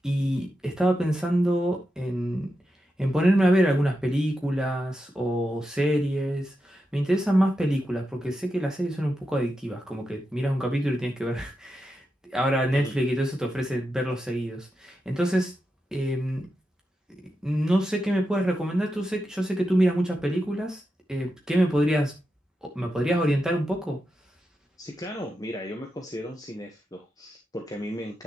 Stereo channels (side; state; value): both; normal; correlation 0.88